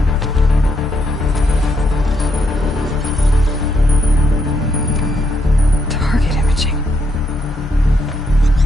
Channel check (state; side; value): normal; both; correlation 0.77